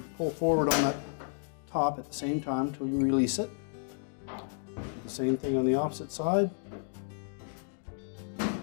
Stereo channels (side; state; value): right; silent; digital silence